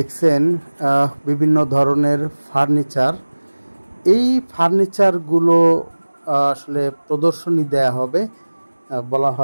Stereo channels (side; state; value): both; inverted; correlation -1.00